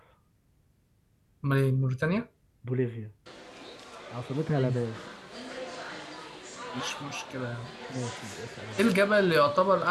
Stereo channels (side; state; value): both; identical; correlation 1.00